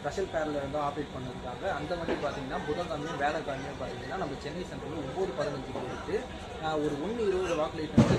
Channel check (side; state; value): both; identical; correlation 1.00